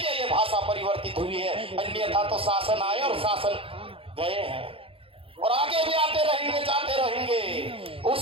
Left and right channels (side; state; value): left; late; 0.27 ms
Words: ये भाषा परिवर्तित हुई है। अन्यथा तो शासन आए और शासन गए हैं और आगे भी आते रहेंगे, जाते रहेंगे,